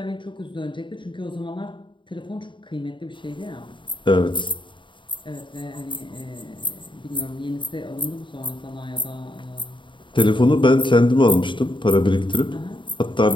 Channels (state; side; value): late; right; 0.23 ms